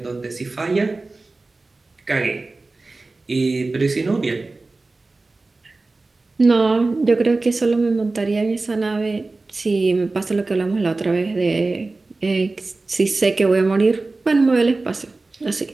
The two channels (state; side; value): quieter; left; 3.4 dB